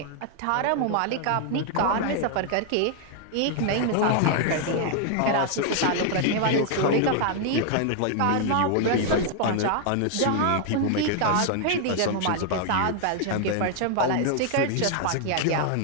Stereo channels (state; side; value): different; both; correlation 0.00